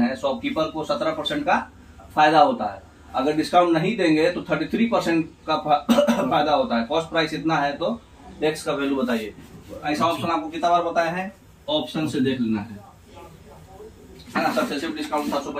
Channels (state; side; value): identical; both; correlation 1.00